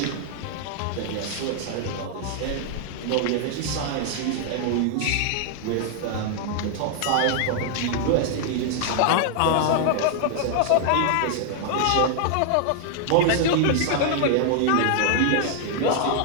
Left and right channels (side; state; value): both; different; correlation 0.00